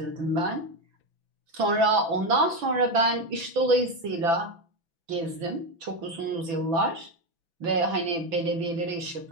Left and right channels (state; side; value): late; left; 6.0 ms